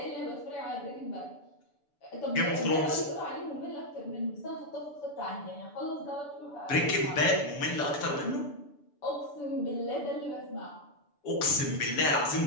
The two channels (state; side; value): late; right; 6.9 ms